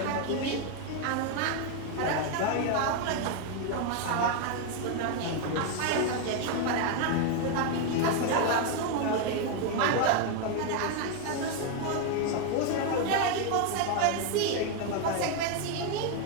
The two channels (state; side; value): different; both; correlation 0.01